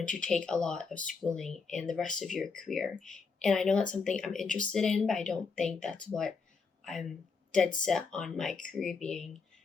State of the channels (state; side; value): quieter; right; 5.0 dB